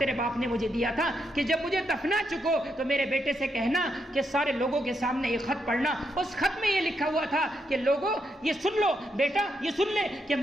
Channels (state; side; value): normal; both; correlation 0.80